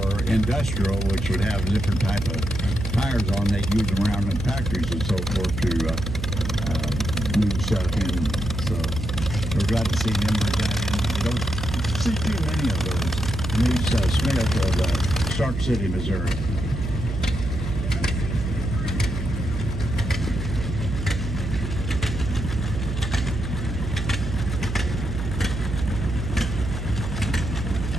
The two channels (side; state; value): right; noise; hum, 4 dB below the sound